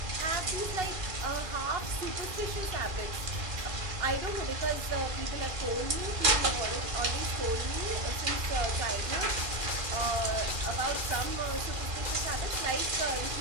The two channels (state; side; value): late; left; 2.4 ms